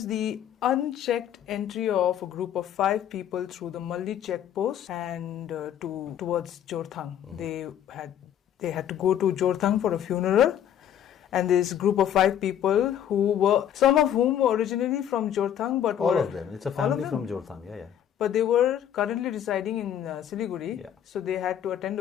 the unchecked entry of a group of 5 people through the Malli checkpost and towards Jorthang. They had to go to Jorthang for a funeral. And this group of 5 people some of whom were originally from Jorthang, but all of them. It's a family from Jorthang, But they were currently residing in Siliguri, Yeah. So they had to attend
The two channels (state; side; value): quieter; right; 10.1 dB